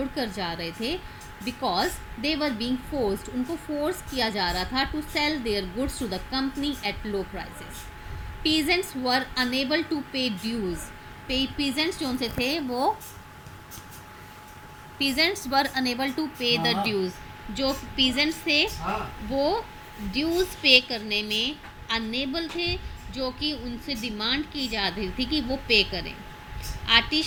जा रहे थे because they were being forced. उनको फोर्स किया जा रहा था to sell their goods to the company at low prices. Peasants were unable to pay dues. Peasants जो उनसे थे वो peasants were unable to pay the dues. जो पीजेंट्स थे वो ड्यूज पे करने में अनेबल थे, जो कि उनसे डिमांड की जा रही थी कि वो पे करें।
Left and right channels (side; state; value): both; identical; correlation 1.00